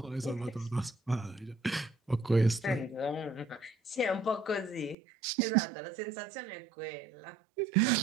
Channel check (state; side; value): drops out; left; at 5.0 s